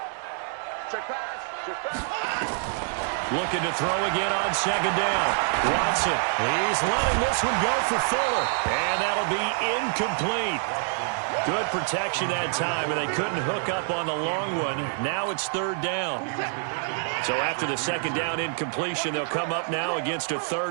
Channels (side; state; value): left; silent; 61 dB below the other